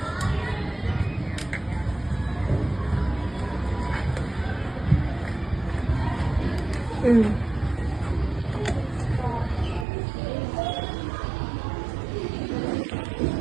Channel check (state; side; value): drops out; left; at 9.9 s